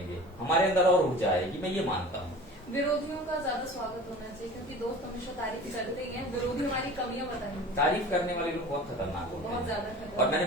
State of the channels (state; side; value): normal; both; correlation 0.40